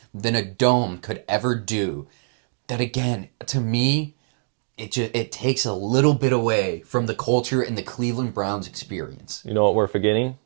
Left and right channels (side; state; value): left; silent; digital silence